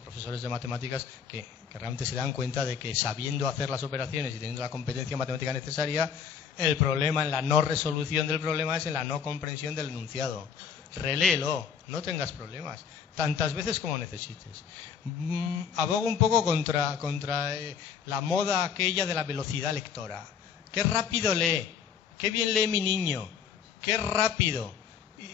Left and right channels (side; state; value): right; quieter; 7.2 dB